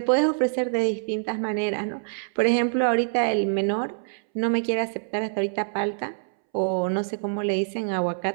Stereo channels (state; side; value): silent; left; 62 dB below the other